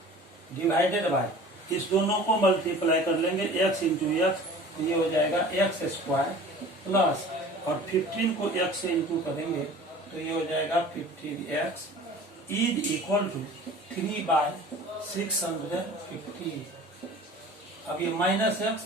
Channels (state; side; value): normal; both; correlation 0.43